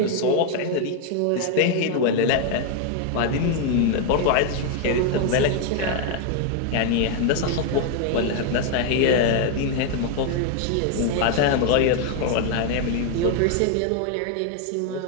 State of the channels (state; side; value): different; both; correlation 0.00